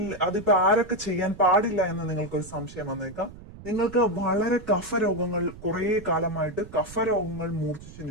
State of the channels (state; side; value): noise; right; rumble, 17 dB below the sound